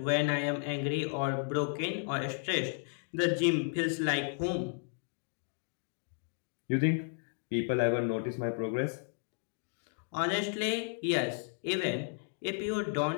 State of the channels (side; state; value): right; silent; 55 dB below the other